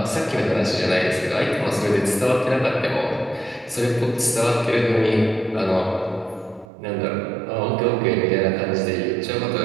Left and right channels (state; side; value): drops out; left; at 6.7 s